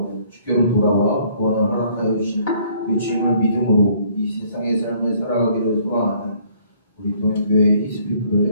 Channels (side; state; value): both; inverted; correlation -0.61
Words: 돌아와 구원을 허락하여 주신 그 주님을 믿음으로 이 세상의 삶을 살아가기를 소망하는 우리 동행교회